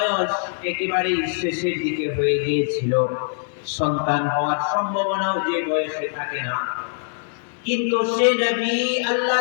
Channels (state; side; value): silent; right; digital silence